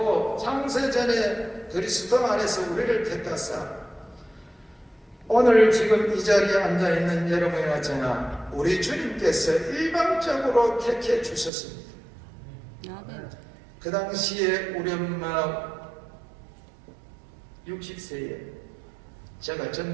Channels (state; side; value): drops out; left; at 11.5 s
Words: 창세전에 그리스도 안에서 우리를 택하사 오늘 지금 이 자리에 앉아있는 여러분이나 저나 우리 주님께서 일방적으로 택해 주셨습니다. 그 당시에 우리 엄마 60세에 제가